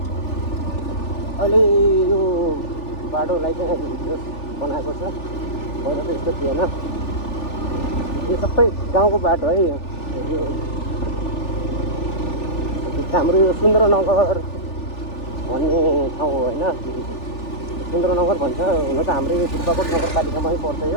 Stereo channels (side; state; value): right; late; 3.4 ms